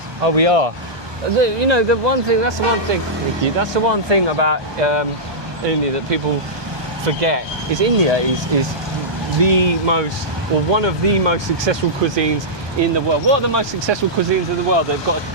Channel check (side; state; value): left; late; 1.2 ms